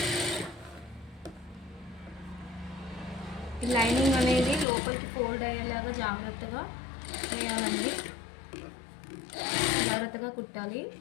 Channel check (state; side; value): drops out; right; at 4.7 s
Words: లైనింగ్ అనేది లోపలికి ఫోల్డ్ అయ్యేలాగా జాగ్రత్తగా వేయాలండి, జాగ్రత్తగా కుట్టాలి.